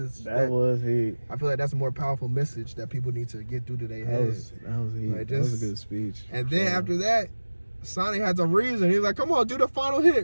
I feel like that's a more powerful message that people need to get through to their heads. That was a good speech. And then after that, Sonic has a reason. He's like, come on, do the final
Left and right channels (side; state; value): both; inverted; correlation -1.00